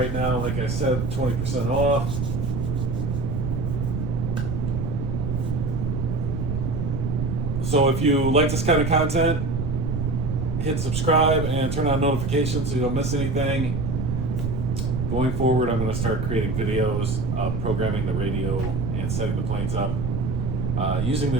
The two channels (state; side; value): noise; right; rumble, 1 dB below the sound